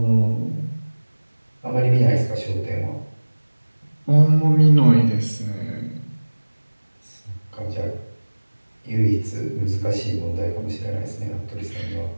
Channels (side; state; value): both; inverted; correlation -1.00